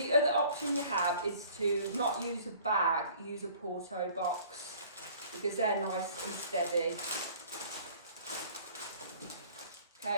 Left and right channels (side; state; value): both; inverted; correlation -0.51